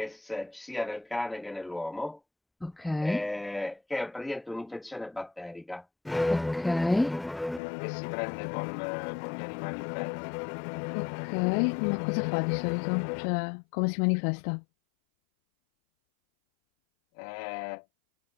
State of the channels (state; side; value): drops out; right; at 7.6 s